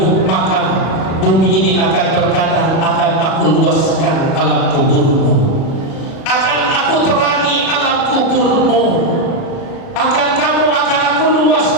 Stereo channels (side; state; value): right; late; 37 ms